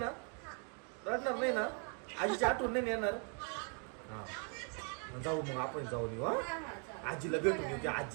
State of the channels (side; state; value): left; quieter; 39.6 dB